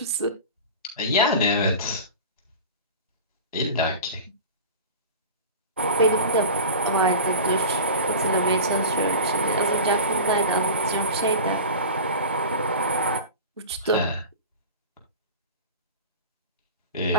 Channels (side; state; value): both; inverted; correlation -0.32